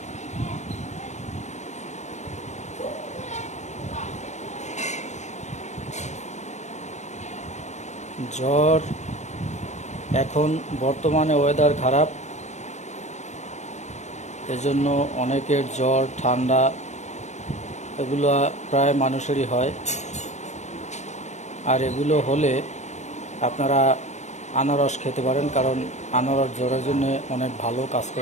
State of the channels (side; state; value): right; late; 0.34 ms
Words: জ্বর, এখন বর্তমানে ওয়েদার খারাপ, এজন্য অনেকের জ্বর ঠান্ডা এগুলো প্রায় মানুষেরই হয়। আর এগুলো হলে আপনারা আনারস খেতে পারেন, কারণ আনারস জ্বরের জন্য অনেক ভালো কাজ